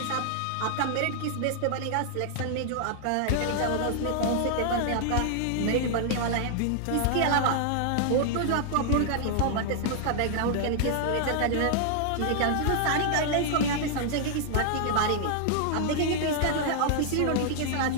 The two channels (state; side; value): different; both; correlation 0.00